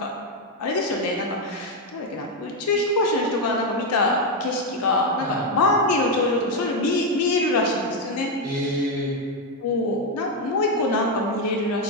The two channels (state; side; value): normal; both; correlation 0.05